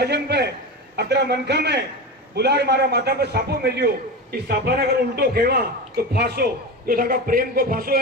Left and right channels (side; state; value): both; normal; correlation 0.23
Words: पे अतरा मनखा में बुलार मारा माथा पे सापो मिलियो। इस सापा ने अगर उल्टो खेवा तो फांसो, जो था प्रेम को फांसो